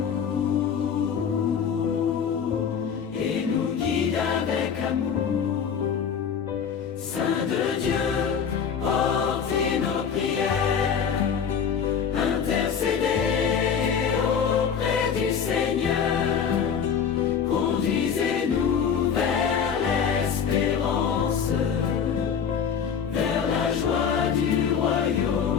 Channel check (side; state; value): right; quieter; 7.2 dB